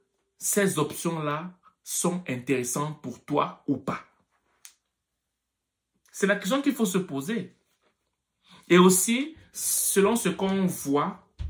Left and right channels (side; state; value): both; identical; correlation 1.00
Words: ces options-là sont intéressantes pour toi ou pas? C'est la question qu'il faut se poser. Et aussi, selon ce qu'on voit,